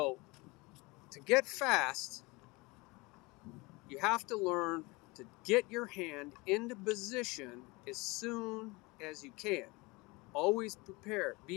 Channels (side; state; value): right; quieter; 24.8 dB